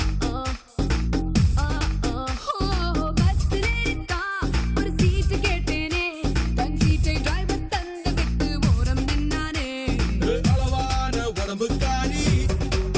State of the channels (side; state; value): both; identical; correlation 1.00